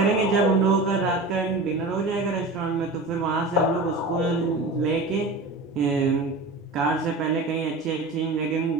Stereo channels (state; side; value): quieter; left; 3.0 dB